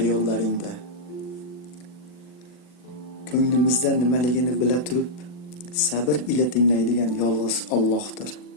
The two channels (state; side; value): late; right; 40 ms